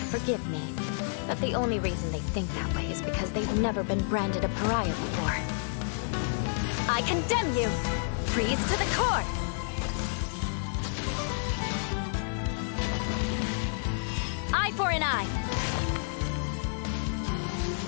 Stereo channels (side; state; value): right; silent; digital silence